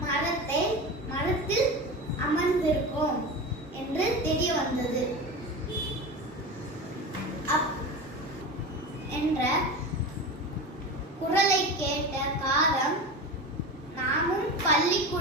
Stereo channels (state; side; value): normal; both; correlation 0.27